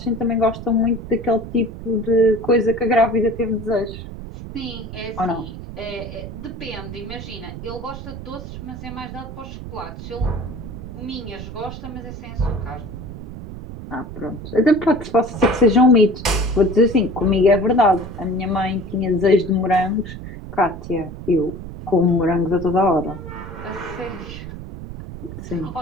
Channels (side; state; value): right; noise; rumble, 11 dB below the sound